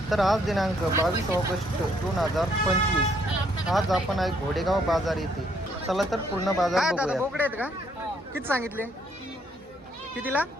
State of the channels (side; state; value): both; normal; correlation 0.69